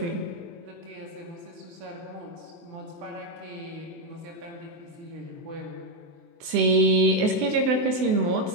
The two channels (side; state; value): left; late; 23 ms